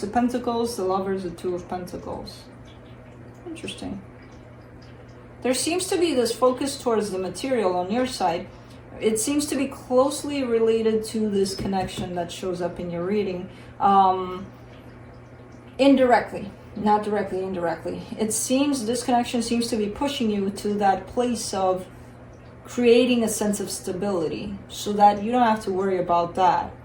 of Pentacles, the Lovers, the Two of Pentacles. Interesting. There seems to be this focus towards the material on your side. It seems to be closely related to this connection that shows up in your reading. Indirectly, not directly, indirectly. It seems this connection seems to be pushing you to that place of creating a sense of stability so that you don't have to worry about that,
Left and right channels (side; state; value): both; identical; correlation 1.00